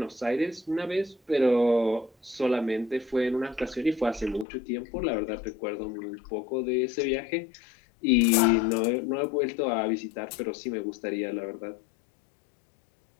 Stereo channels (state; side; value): drops out; right; at 4.5 s